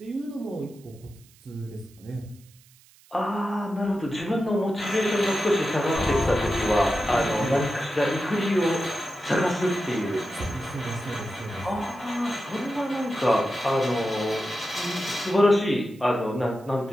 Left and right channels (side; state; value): right; noise; hiss, 28 dB below the sound